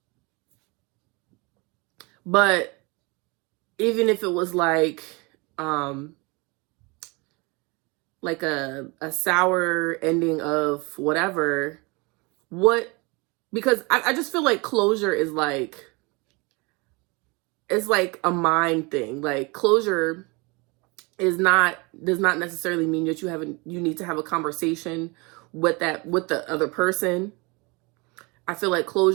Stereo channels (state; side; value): quieter; left; 27.6 dB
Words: But even if it was like a sour ending of whatever, because I just feel like closure is like, it's like a mind thing. Like, closure does not necessarily mean that you need to have a conversation with the other person. I feel like